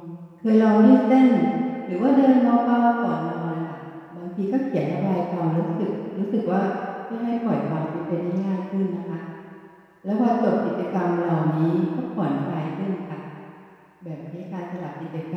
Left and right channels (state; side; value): identical; both; correlation 1.00